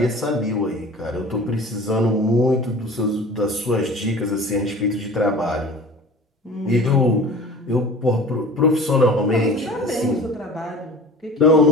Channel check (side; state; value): both; normal; correlation 0.41